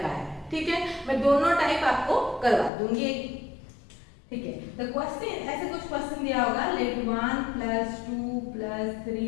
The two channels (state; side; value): drops out; right; at 2.7 s